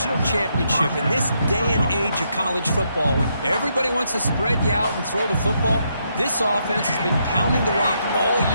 championship in this day and age of college football when everybody wants to spread you out and throw the football. This offense has been pounding the rock all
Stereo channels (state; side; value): inverted; both; correlation -0.77